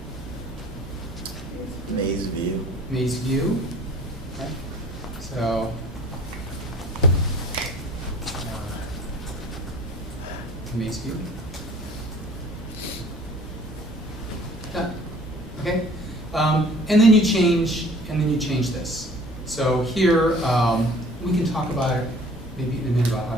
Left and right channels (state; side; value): normal; both; correlation 0.50